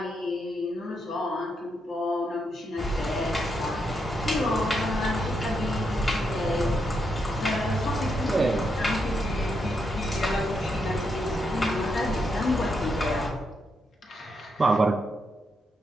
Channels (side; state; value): both; normal; correlation 0.81